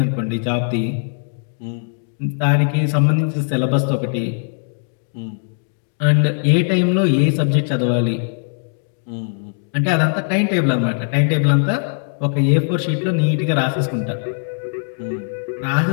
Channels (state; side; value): silent; right; digital silence